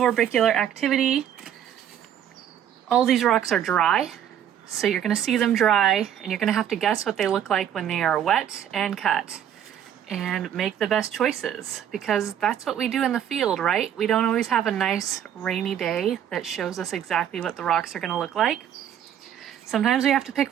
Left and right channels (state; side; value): quieter; left; 9.9 dB